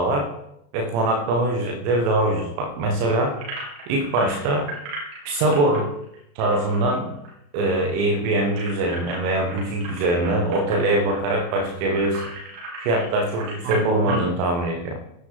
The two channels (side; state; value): left; late; 35 ms